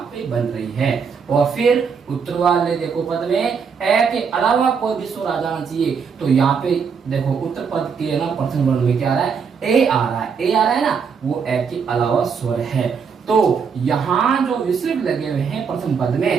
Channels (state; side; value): quieter; left; 6.1 dB